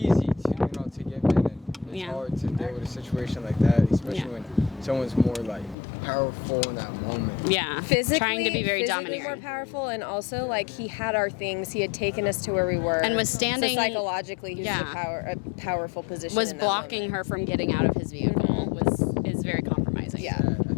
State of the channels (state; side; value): drops out; right; at 5.8 s